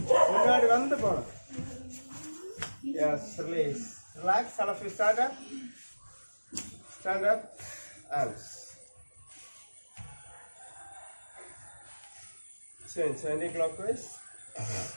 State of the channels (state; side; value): inverted; both; correlation -1.00